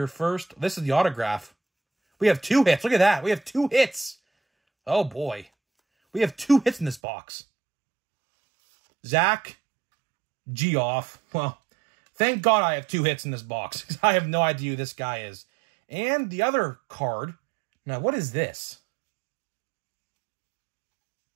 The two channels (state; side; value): drops out; left; at 7.0 s